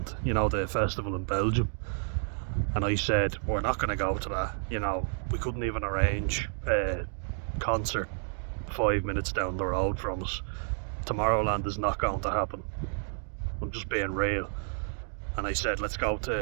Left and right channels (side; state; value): left; silent; 58 dB below the other